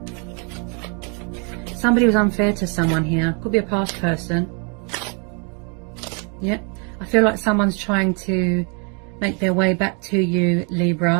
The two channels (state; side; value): quieter; left; 36.2 dB